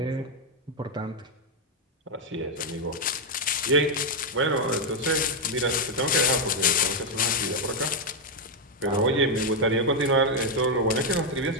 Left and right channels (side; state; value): both; normal; correlation 0.01